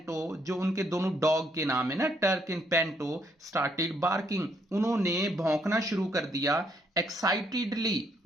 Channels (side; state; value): both; normal; correlation 0.72